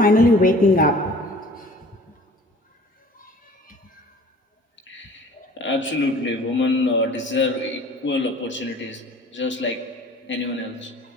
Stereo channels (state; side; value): normal; both; correlation 0.47